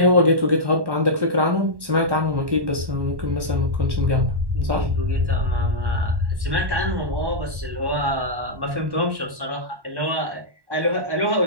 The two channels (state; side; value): late; left; 1.1 ms